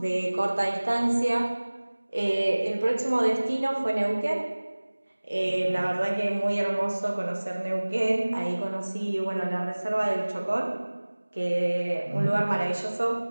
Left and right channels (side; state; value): both; inverted; correlation -1.00